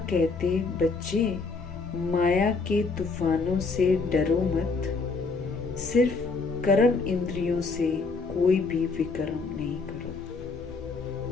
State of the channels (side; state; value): right; quieter; 4.2 dB